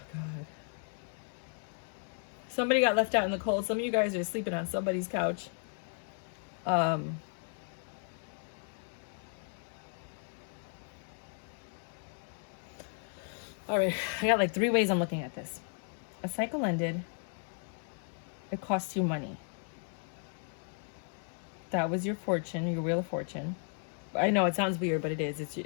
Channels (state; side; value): silent; right; 55 dB below the other